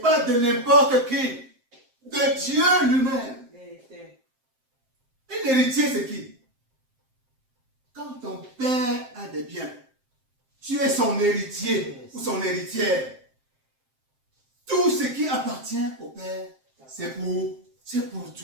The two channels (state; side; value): late; left; 7.6 ms